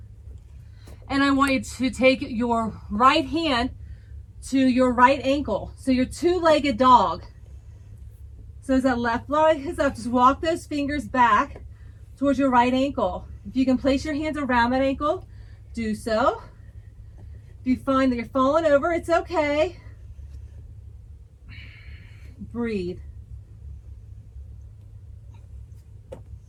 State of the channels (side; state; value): both; identical; correlation 1.00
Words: and I want you to take your right hand to your right ankle. So your two-legged dog. So as that left leg is up, just walk those fingers back towards your right ankle. If you can place your hands around that ankle, do so. If you find that you're falling over, it's okay. Breathe.